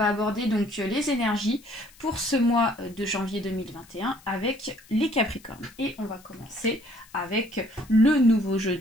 aborder donc les énergies pour ce mois de janvier 2021 avec les Capricornes. Et on va commencer avec le nouveau jeu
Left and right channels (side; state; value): left; noise; hiss, 25 dB below the sound